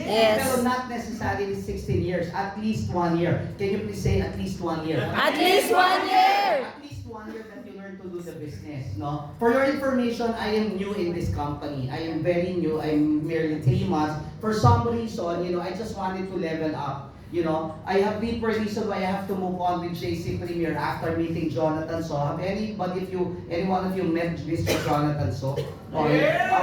Pero not necessarily 16 years, at least 1 year. Can you please say at least 1 year? At least 1 year! At least 1 year that you learn to do the business, no? For your information, I am new in this company. I am very new. I'm merely 3 months. For some reason, I just wanted to level up. You know, I have deeper reason why I have to move on with JC Premier after meeting Jonathan So. Have any one of you met Mr. Jonathan So? Okay,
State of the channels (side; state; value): both; identical; correlation 1.00